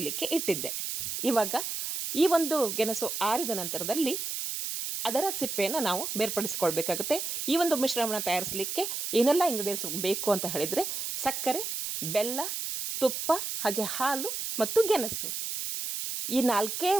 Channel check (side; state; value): right; noise; hiss, 4 dB below the sound